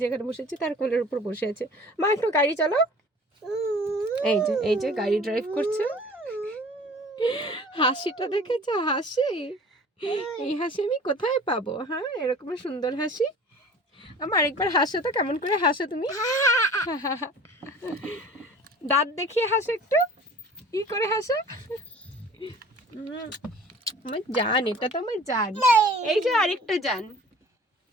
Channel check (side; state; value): both; normal; correlation 0.45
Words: যেখানে বসেছি তার কোলের উপর বসে আছে। মা একটু গাড়ি চালাও। এই যে গাড়ি ড্রাইভ করছে। হাসিটা দেখেছো? হাসি, এই হাসি আমি কোথায় পাবো? হ্যাঁ, এরকম সুন্দর হাসি। আমার আরেকবার হাসো তো, কেমন করে হাসো তুমি? দাঁত দেখিয়ে হাসো একটু, কি করে হাসো? আমার জান, এটা তো আমার জান। এই যে আরেকটা জান।